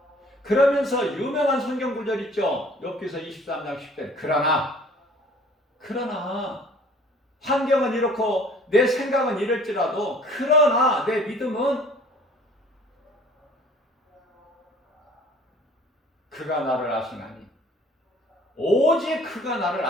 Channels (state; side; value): normal; both; correlation 0.52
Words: 그러면서 유명한 성경 구절 있죠. 욥기서 23장 10절. 그러나 환경은 이렇고 내 생각은 이럴지라도 그러나 내 믿음은 그가 나를 아시나니, 오직 그가 나를